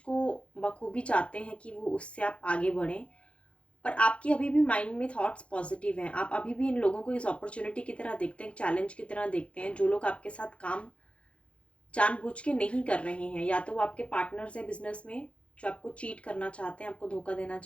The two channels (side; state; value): right; late; 0.061 ms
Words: बखूबी चाहते हैं कि वो उससे आप आगे बढ़ें, पर आपकी अभी भी माइंड में थॉट्स पॉजिटिव हैं। आप अभी भी इन लोगों को इस अपॉर्चुनिटी की तरह देखते हैं, चैलेंज की तरह देखते हैं। जो लोग आपके साथ काम जानबूझ के नहीं कर रहे हैं, या तो वो आपके पार्टनर्स हैं बिजनेस में, जो आपको चीट करना चाहते हैं, आपको धोखा देना